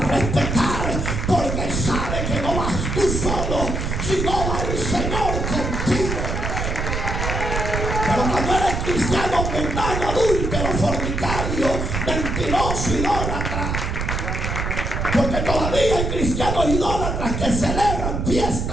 porque sabe que no vas tú solo, sino va el Señor contigo. Pero cuando eres cristiano mundano, adúltero, fornicario, mentiroso, idólatra, porque todavía hay cristianos idólatras que celebran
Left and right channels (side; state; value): right; noise; rumble, 2 dB below the sound